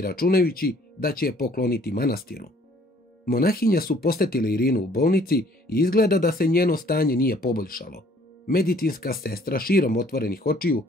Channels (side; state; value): both; normal; correlation 0.59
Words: računajući da će je pokloniti manastiru. Monahinja su posjetile Irinu u bolnici i izgleda da se njeno stanje nije poboljšalo. Medicinska sestra širom otvorenih očiju